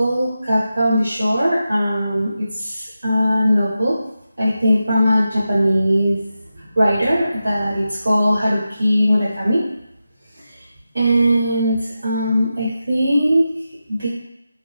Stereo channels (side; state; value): both; inverted; correlation -0.91